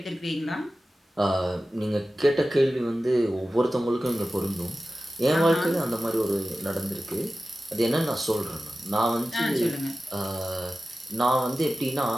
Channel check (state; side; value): normal; both; correlation 0.95